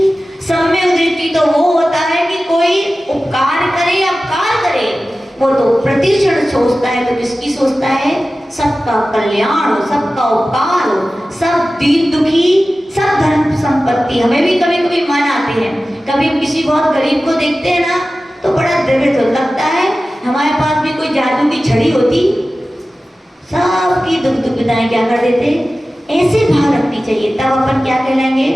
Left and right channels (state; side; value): normal; both; correlation 0.95